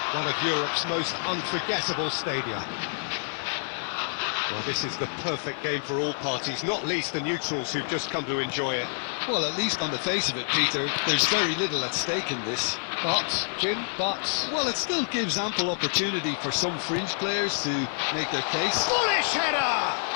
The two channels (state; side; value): silent; right; digital silence